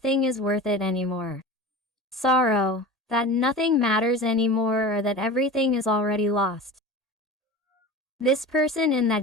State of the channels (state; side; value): normal; both; correlation 0.33